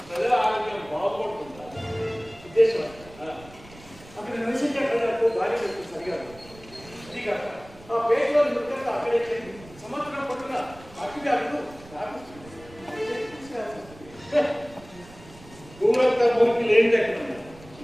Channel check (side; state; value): right; noise; rumble, 21 dB below the sound